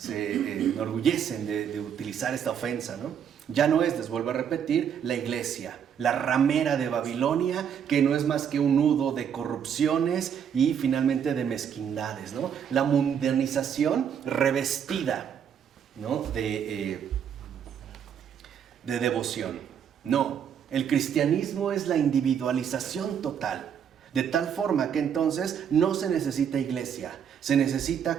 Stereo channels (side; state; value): left; quieter; 8.2 dB